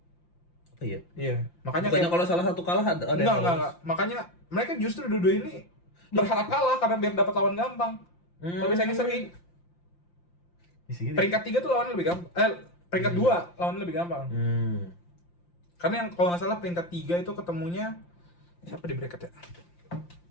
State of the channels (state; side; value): late; right; 5.8 ms